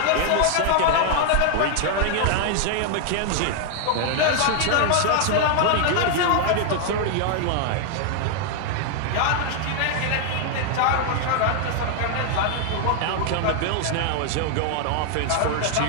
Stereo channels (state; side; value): different; both; correlation 0.00